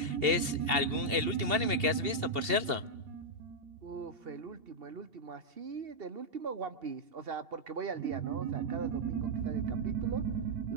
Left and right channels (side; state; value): left; late; 2.8 ms